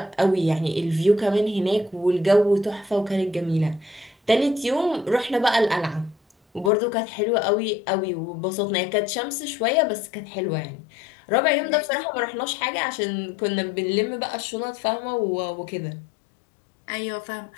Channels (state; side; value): drops out; right; at 6.7 s